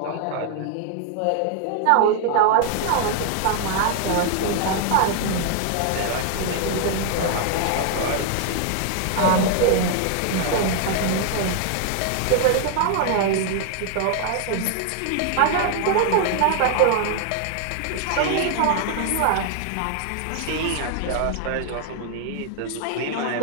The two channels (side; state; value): both; different; correlation 0.00